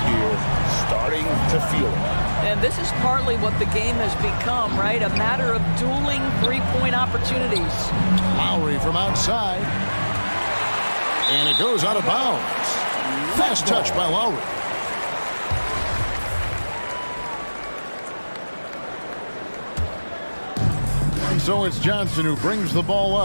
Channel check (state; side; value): inverted; both; correlation -1.00